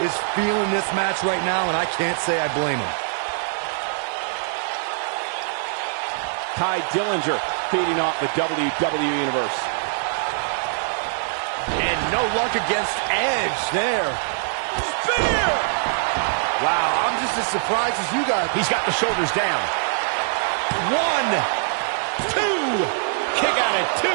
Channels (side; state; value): left; silent; digital silence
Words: is feeling this match right now, and I can't say I blame him. Ty Dillinger feeding off the WWE Universe. And no luck against Edge there. Spear! Wow, I'm just as surprised as you guys. He's got the shoulders down. 1, 2. Kick out at 2.